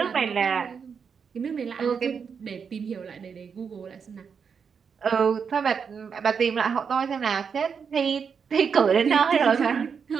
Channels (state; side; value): quieter; left; 6.3 dB